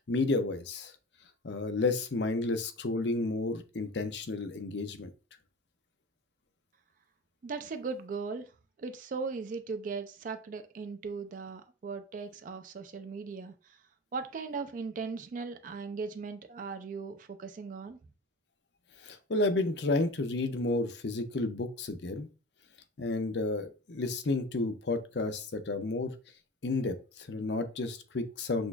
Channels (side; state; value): both; normal; correlation 0.34